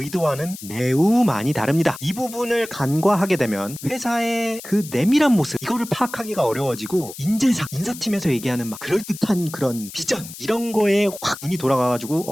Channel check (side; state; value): left; noise; hiss, 14 dB below the sound